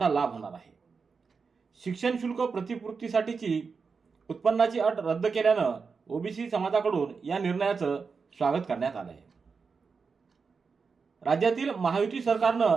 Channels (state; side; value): quieter; left; 5.1 dB